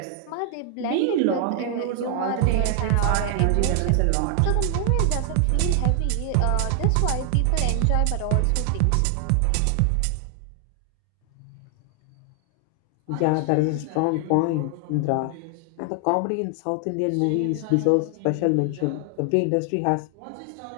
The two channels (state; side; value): different; both; correlation 0.00